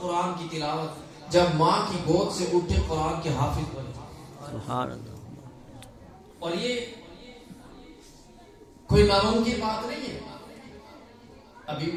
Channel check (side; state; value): both; identical; correlation 1.00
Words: قرآن کی تلاوت. جب ماں کی گود سے اٹھے قرآن کے حافظ بنے. سبحان اللہ. اور یہ کوئی ناممکن بات نہیں ہے. ابھی